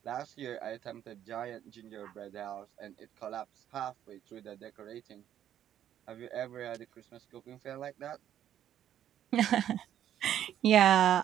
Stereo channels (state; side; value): quieter; left; 10.8 dB